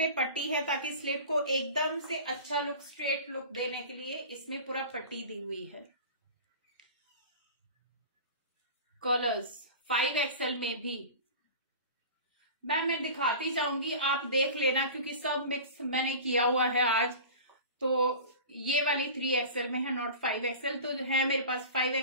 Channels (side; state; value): both; inverted; correlation -0.36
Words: पट्टी है ताकि स्लिट को एकदम से अच्छा लुक, स्ट्रेट लुक देने के लिए इसमें पूरा पट्टी दी हुई है। कलर्स 5XL में भी मैम मैं दिखाती जाऊंगी, आप देख लेना, क्योंकि सब मिक्स मैंने किया हुआ है आज। तो ये वाली 3XL में है, नॉट 5XL। तो है मेरे पास